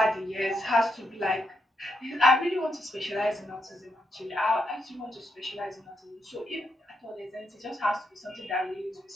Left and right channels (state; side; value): normal; both; correlation 0.80